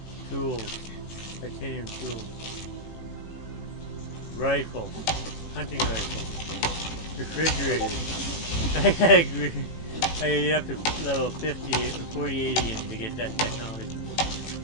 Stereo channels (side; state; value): right; late; 18 ms